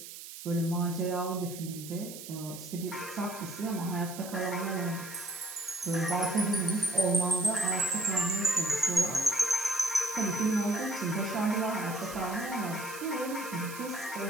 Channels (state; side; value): noise; right; hiss, 12 dB below the sound